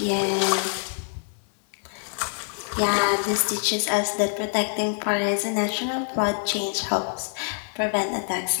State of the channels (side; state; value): right; silent; 61 dB below the other